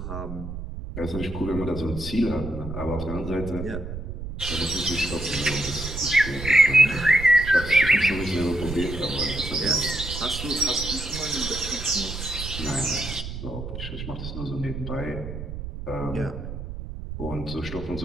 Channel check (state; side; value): noise; right; rumble, 8 dB below the sound